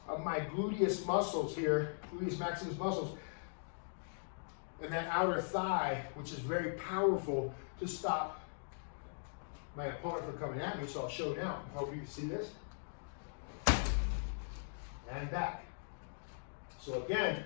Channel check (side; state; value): right; silent; digital silence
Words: of my gluteus muscles here, gluteus maximus muscles, and that outer thigh, which is very powerful to stop my opponent from coming at me. So I'll show now. I hope you can see this. And back. So again,